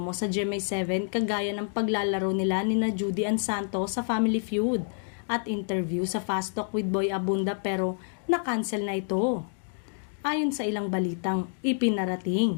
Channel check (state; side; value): silent; right; 58 dB below the other